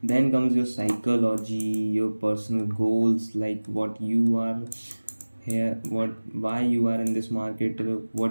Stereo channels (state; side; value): inverted; both; correlation -1.00